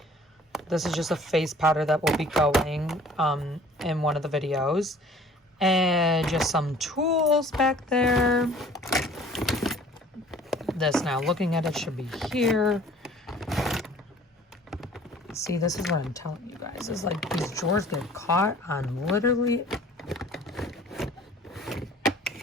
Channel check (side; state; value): both; normal; correlation 0.51